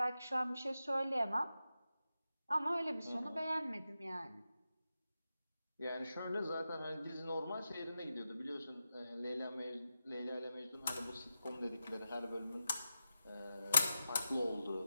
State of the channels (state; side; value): inverted; both; correlation -0.90